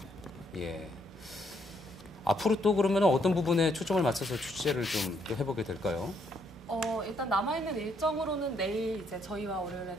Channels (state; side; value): normal; both; correlation 0.72